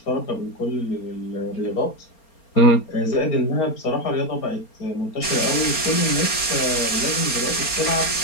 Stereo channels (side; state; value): right; late; 4.3 ms